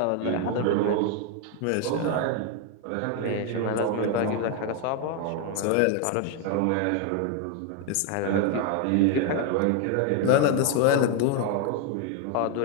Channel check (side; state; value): both; different; correlation 0.01